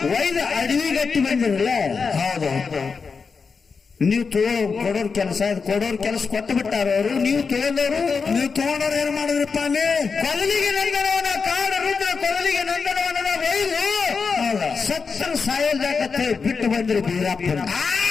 ಒಯ್ದ ಅಡವಿ ಗಟ್ಟಿ ಬಂದಿರಲ್ಲ. ಹೌದು. ನೀವು ಕೊಡೋರ್ ಕೆಲಸ ಕೊಟ್ಟು ಬಿಟ್ಟಾರ ಅವರು. ನೀವು ತಗೊಂಡವರು ತಗೊಂಡವ್ರು ಏನ್ ಮಾಡಿದ್ರಪ್ಪ? ಅಲ್ಲಿ ಕೊದಲಿಗೆ ನಂದನವನ ಕಾಡ ರುದ್ರ ಕೊದಲಿಗೆ ನಂದನವನ ಒಯ್ದು ಸತ್ತರ ಸಾಯಲ್ದಾಕತ್ತೆ ಬಿಟ್ಟು ಬಂದ್ರು ಬೀರಪ್ಪನ.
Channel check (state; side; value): quieter; right; 5.2 dB